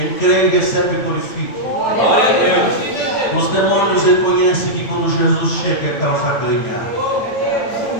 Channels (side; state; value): right; late; 8.9 ms